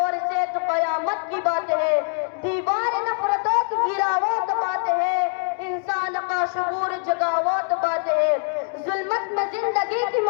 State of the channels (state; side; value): silent; right; digital silence